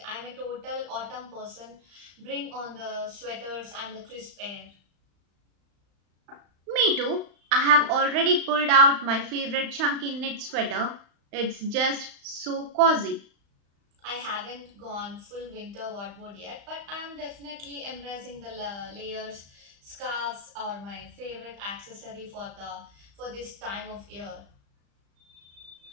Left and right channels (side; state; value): left; late; 35 ms